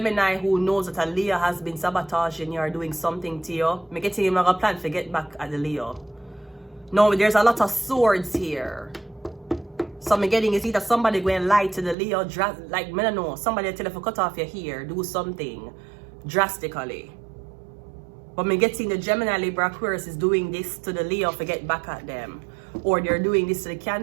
who knows that a Leo has been sabotaging you or doing something to you. Me getting him a plan to get back at the Leo. No, there's a lot of swords here. So I'm getting is either somebody going to lie to the Leo, like, I don't know, somebody tell you to cut off your hair, do something drastically. But I'm getting the Gemini, Libra, Aquarius is doing this to the Leo to get back at them. Or they're doing this to the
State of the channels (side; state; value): left; drops out; at 12.0 s